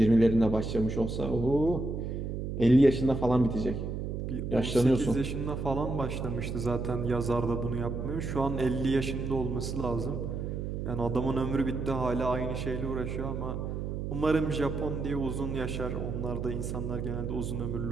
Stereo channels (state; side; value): noise; right; hum, 4 dB below the sound